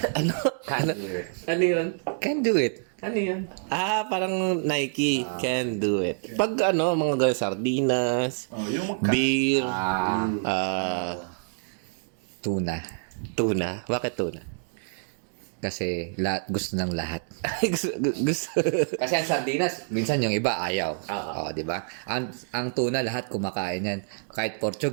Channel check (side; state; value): left; silent; digital silence